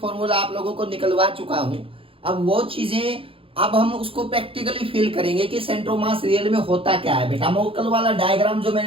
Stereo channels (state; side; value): late; left; 0.27 ms